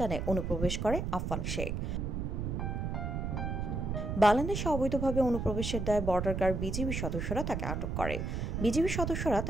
অনুপ্রবেশ করে আফফান শেখ। বাংলাদেশে অবৈধভাবে অনুপ্রবেশের দায়ে বর্ডার গার্ড বিজিবি সদস্যরা তাকে আটক করে। বিজিবি সদস্যরা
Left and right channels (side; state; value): right; noise; rumble, 2 dB below the sound